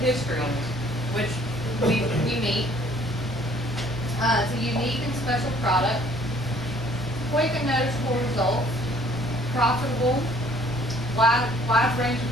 history, which we meet. It's a unique and special product, quick and noticeable results, profitable, wide range of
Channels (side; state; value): both; normal; correlation 0.58